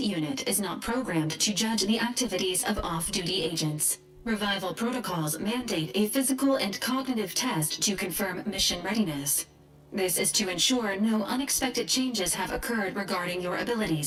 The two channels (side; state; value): both; identical; correlation 1.00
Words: unit is not programmed to judge the activities of off-duty agents. Revival protocols mandate a physical and cognitive test to confirm mission readiness. This is to ensure no unexpected changes have occurred regarding your